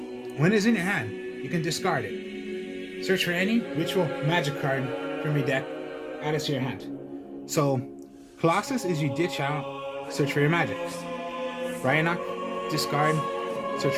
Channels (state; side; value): identical; both; correlation 1.00